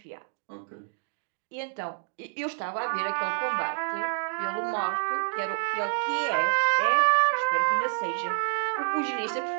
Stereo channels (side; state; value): left; silent; digital silence